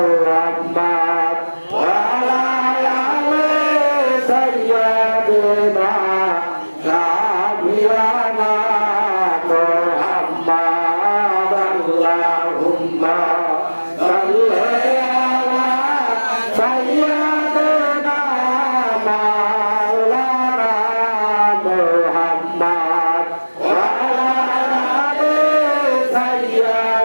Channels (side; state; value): both; inverted; correlation -1.00